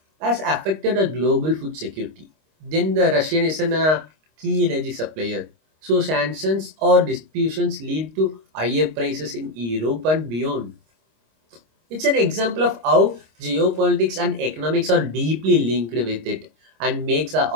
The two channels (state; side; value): late; left; 26 ms